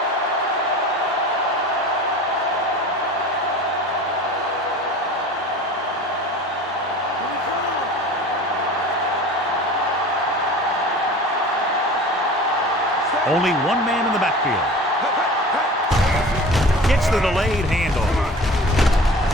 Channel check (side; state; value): both; normal; correlation 0.40